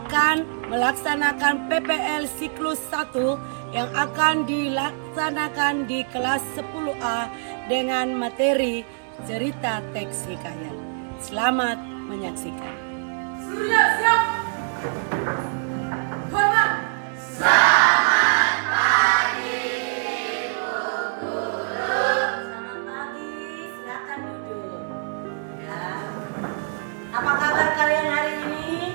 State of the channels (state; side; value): silent; left; digital silence